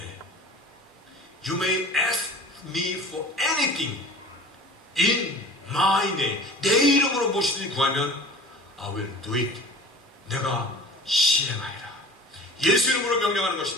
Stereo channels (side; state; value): both; normal; correlation 0.41